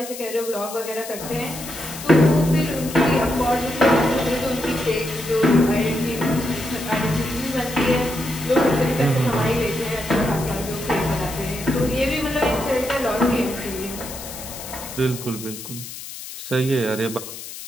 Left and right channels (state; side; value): noise; left; hiss, 11 dB below the sound